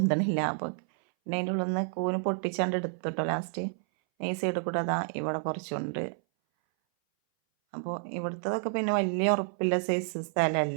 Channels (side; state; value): left; silent; 58 dB below the other